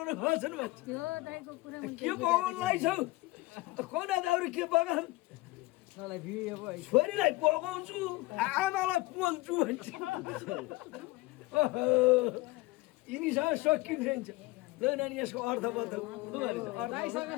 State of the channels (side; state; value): right; quieter; 21.0 dB